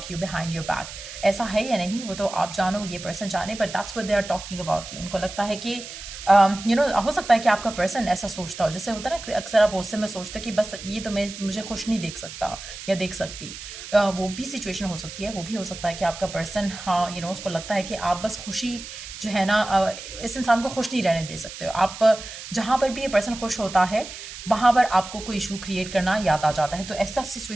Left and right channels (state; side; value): noise; right; hiss, 12 dB below the sound